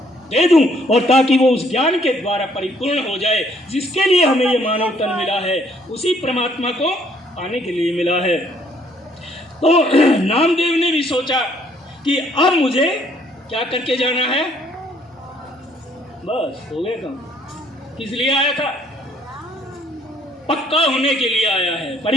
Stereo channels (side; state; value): both; normal; correlation 0.64